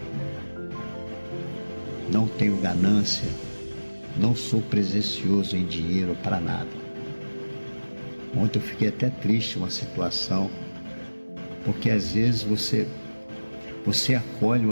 Não tenho ganância, não sou presencioso em dinheiro para nada. Ontem eu fiquei até triste uma situação, porque às vezes você acolhe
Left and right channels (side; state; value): both; inverted; correlation -1.00